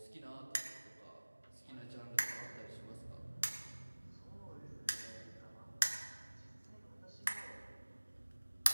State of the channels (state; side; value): inverted; both; correlation -1.00